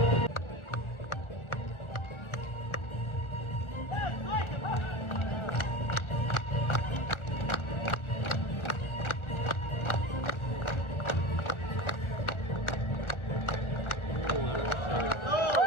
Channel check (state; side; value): late; right; 1.4 ms